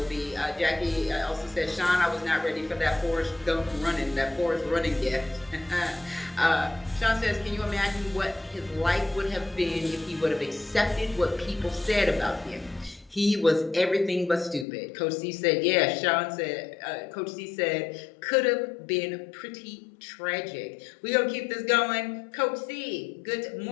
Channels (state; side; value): drops out; right; at 14.7 s